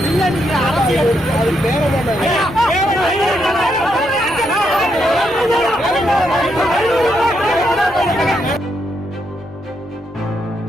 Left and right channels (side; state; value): both; normal; correlation 0.79